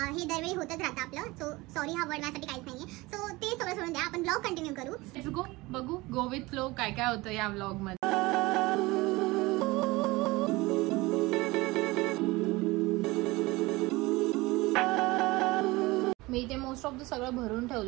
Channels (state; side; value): quieter; left; 21.6 dB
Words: दरवेळी होतच राहतं आपलं. सो सॉरी हा वर्ड माझ्यासाठी काहीच नाहीये. सो ते सगळं सोडून द्या, आपण व्लॉग कंटिन्यू करू. Let's go. बघू गो विथ फ्लो काय काय होतं या व्लॉग मध्ये. मी इथे मोस्ट ऑफ द सगळं भरून